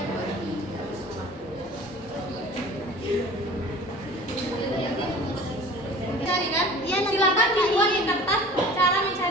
Cari kan? Silakan dibuat di kertas cara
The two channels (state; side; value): normal; both; correlation 0.43